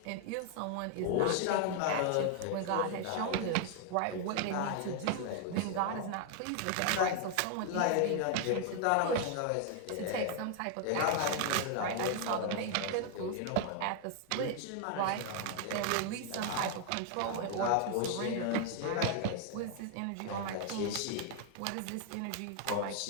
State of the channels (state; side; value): different; both; correlation 0.00